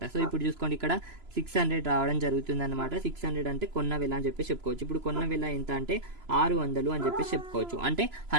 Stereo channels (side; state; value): left; late; 3.0 ms